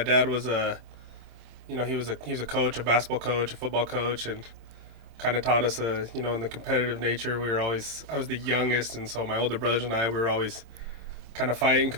dad was he was a coach, a basketball coach, a football coach, and kind of taught us in the competitive nature. I was the youngest, and so my older brothers and I we were always kind of fighting,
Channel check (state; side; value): late; left; 26 ms